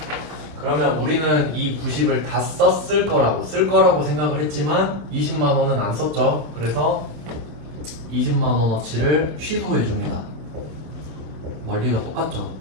그러면 우리는 이 90을 다 쓸 거라고 생각을 했지만 20만 원은 안 썼죠. 그래서 20만 원어치를 취소해 줍니다. 원리가 똑같죠.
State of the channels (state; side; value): late; left; 26 ms